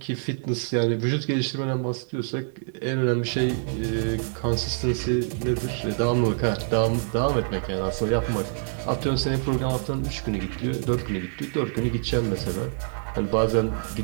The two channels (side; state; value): left; silent; digital silence